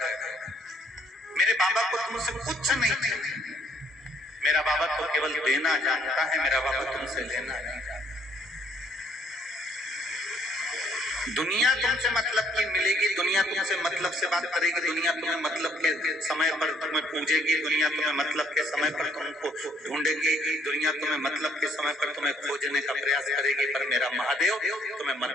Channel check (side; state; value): both; normal; correlation 0.64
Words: मेरे बाबा को तुमसे कुछ नहीं चाहिए, मेरा बाबा तो केवल देना जानता है, मेरा बाबा तुमसे लेना नहीं जानता। दुनिया तुमसे मतलब की मिलेगी, दुनिया तुमसे मतलब से बात करेगी, दुनिया तुम्हें मतलब के समय पर तुम्हें पूजेगी, दुनिया तुम्हें मतलब के समय पर तुमको ढूंढेगी, दुनिया तुम्हें मतलब के समय पर तुम्हें खोजने का प्रयास करेगी, पर मेरा महादेव तुम्हें